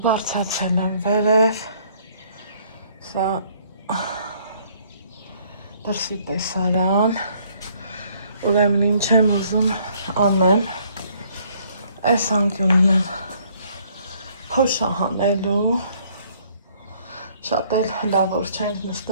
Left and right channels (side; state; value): both; inverted; correlation -0.63